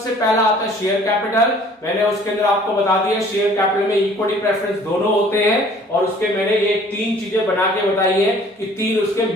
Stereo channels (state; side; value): normal; both; correlation 0.53